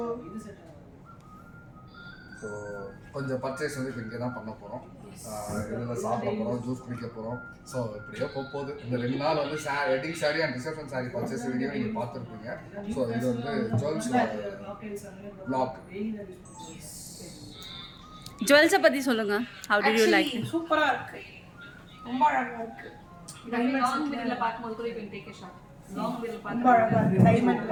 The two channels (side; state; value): both; identical; correlation 1.00